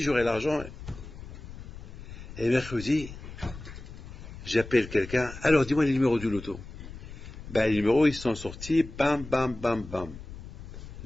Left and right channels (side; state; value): left; noise; rumble, 13 dB below the sound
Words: j'aurai l'argent. Et mercredi, j'appelle quelqu'un. Alors, dis-moi les numéros du loto. Les numéros, ils sont sortis. Bam, bam, bam, bam.